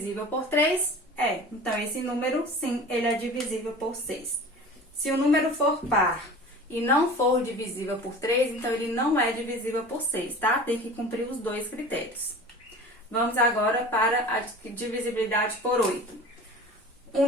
por 3? É. Então, esse número, sim, ele é divisível por 6. Se o número for par e não for divisível por 3, então ele não é divisível por 6, tá? Tem que cumprir os dois critérios. Vamos agora para a divisibilidade por 8. O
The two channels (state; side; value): normal; both; correlation 0.38